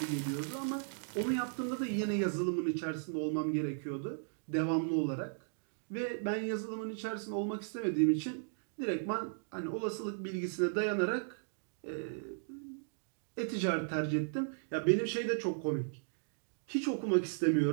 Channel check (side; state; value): left; silent; digital silence